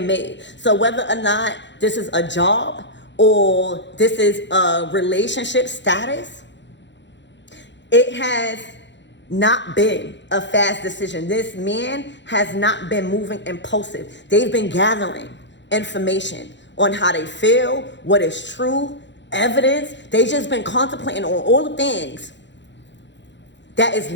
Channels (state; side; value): late; right; 0.52 ms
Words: made. So whether or not this is a job or this is a relationship status, it has not been a fast decision. This man has not been moving impulsive. They've been gathering information on how they feel, what is true, evidence. They've just been contemplating on all the things that is